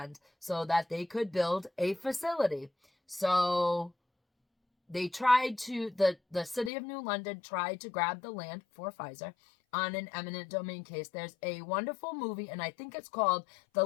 so that they could build a facility. So they tried to, the city of New London tried to grab the land for Pfizer on an eminent domain case. There's a wonderful movie, and I think it's called The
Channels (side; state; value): right; drops out; at 6.7 s